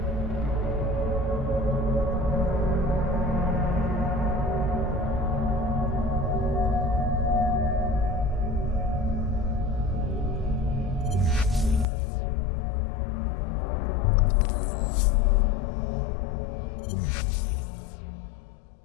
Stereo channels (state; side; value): drops out; right; at 11.9 s